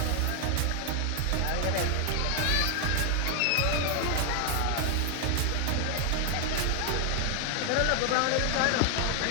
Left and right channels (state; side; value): different; both; correlation 0.00